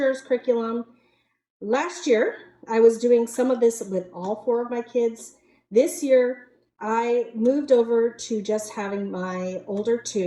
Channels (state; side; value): identical; both; correlation 1.00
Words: curriculum. Last year, I was doing some of this with all 4 of my kids. This year, I moved over to just having my older